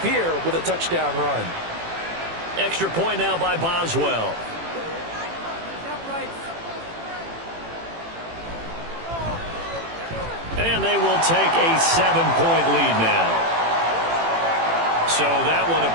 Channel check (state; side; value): late; left; 18 ms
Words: here with a touchdown run. Extra point now by Boswell. And they will take a 7-point lead now. So that one a